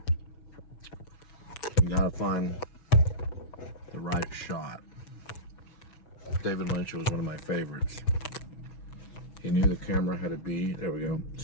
You gotta find the right shot. David Lynch was one of my favorites. He knew the camera had to be, there we go,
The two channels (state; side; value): late; right; 6.2 ms